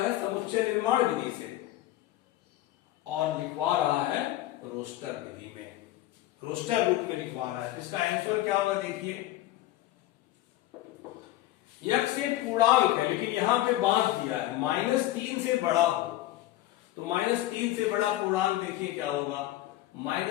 समुच्चय निर्माण विधि से और लिखवा रहा है रोस्टर विधि में, रोस्टर रूप में लिखवा रहा है। इसका आंसर क्या होगा देखिए, यक्स एक पूर्णांक है लेकिन यहां पे बांध दिया है -3 से बड़ा हो, तो -3 से बड़ा पूर्णांक देखिए क्या होगा,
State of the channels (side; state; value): right; quieter; 15.2 dB